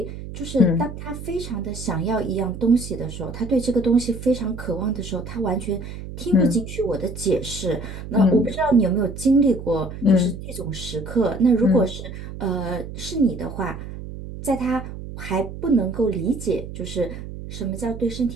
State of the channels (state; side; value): noise; right; hum, 10 dB below the sound